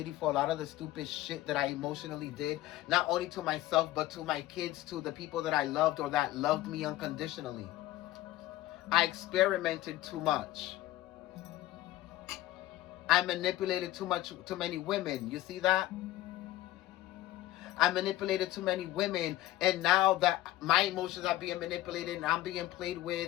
for a lot of the stupid shit that I emotionally did, not only to myself, but to my kids, to the people that I loved or that loved me unconditionally. I experimented too much. I manipulated too many women. You see that? I manipulated too many women, and now that my emotions are being manipulated and I'm being played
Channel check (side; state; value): right; quieter; 15.5 dB